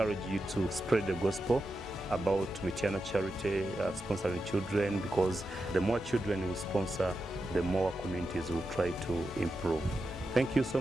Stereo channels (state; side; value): normal; both; correlation 0.89